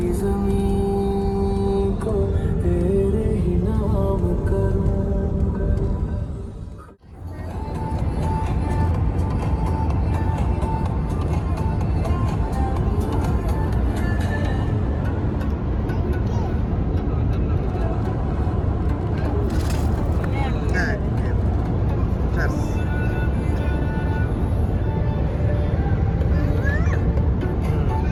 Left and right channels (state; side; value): identical; both; correlation 1.00